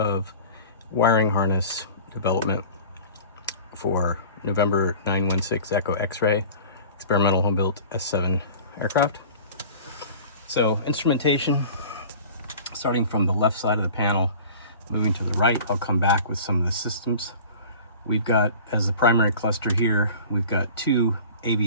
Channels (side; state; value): both; inverted; correlation -0.41